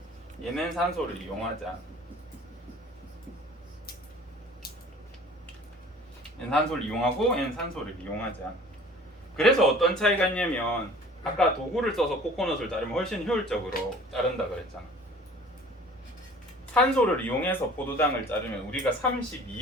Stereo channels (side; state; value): both; normal; correlation 0.48